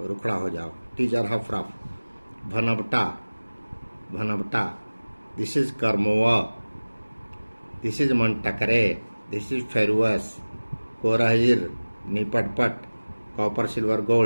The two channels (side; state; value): both; inverted; correlation -1.00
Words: रुखड़ा हो जाओ. टीजर हफ, रफ. भनवटा, भनवटा. दिस इज कर्मोवा. दिस इज मनटकरे. This is ferrous. Korahir, Nipatpat, copper, silver,